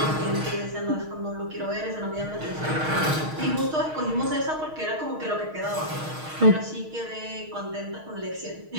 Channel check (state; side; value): late; left; 6.4 ms